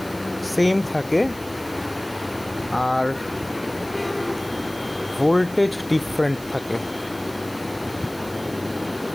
সেম থাকে আর ভোল্টেজ ডিফারেন্ট থাকে।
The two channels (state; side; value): noise; right; hiss, 20 dB below the sound